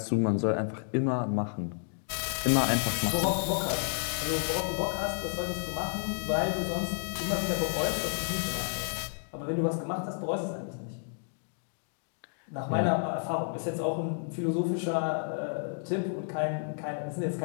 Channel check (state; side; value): silent; right; digital silence